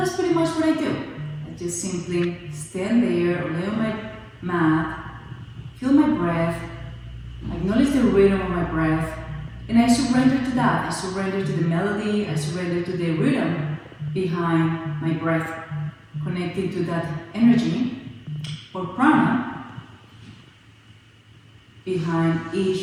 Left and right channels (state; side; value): identical; both; correlation 1.00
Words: pretty much what I do. I just simply stand there, lay on my mat, feel my breath, acknowledge the rhythm of my breath, and I surrender to that. I surrender to the melody, I surrender to the rhythm behind my breath, connecting to that energy or prana behind